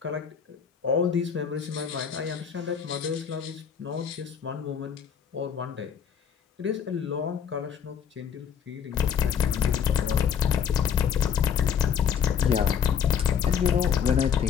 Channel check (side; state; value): right; quieter; 7.7 dB